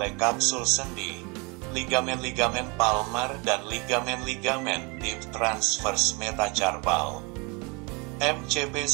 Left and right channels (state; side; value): quieter; left; 29.7 dB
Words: kapsul sendi, ligamen palmar dan ligamen deep transverse metacarpal. MCP